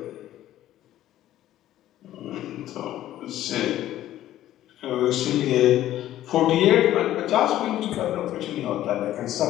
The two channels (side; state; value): right; quieter; 13.3 dB